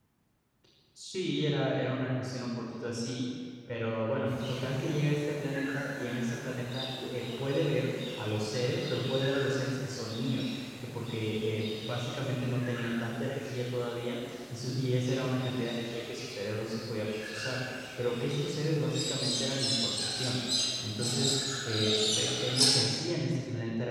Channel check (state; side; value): identical; both; correlation 1.00